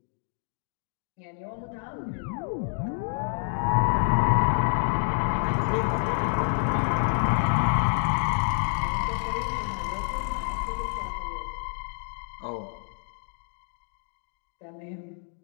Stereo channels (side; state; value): right; silent; digital silence